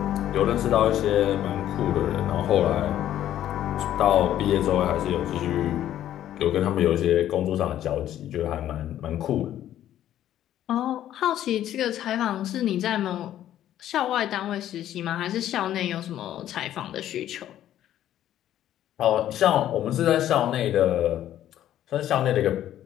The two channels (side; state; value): right; quieter; 11.9 dB